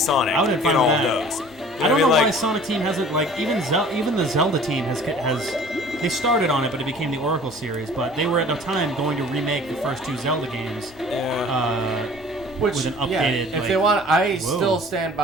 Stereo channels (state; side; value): normal; both; correlation 0.48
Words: I would have in fun all with of that. those. You I don't know what why Like, Sonic Team hasn't like even the Zelda team has they started on it, but it became the Oracle series. But they were at the time going to remake the first two Zelda games. With an updated. If like, they want, I whoa. still stand